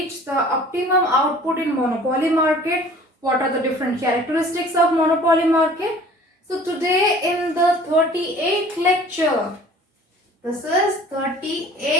the optimum output in monopoly market. What are the different characteristics of monopoly market? So today in the 38th lecture, this is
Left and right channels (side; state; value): both; normal; correlation 0.48